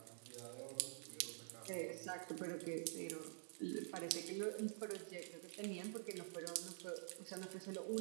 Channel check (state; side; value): silent; left; digital silence